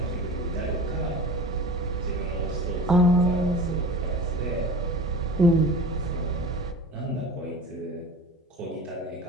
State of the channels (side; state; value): both; normal; correlation 0.36